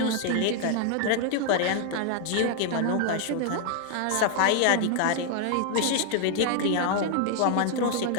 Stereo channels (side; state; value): both; different; correlation 0.00